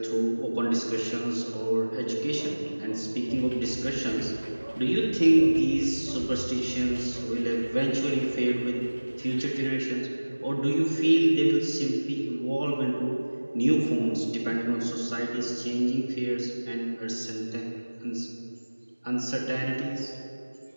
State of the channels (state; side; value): inverted; both; correlation -1.00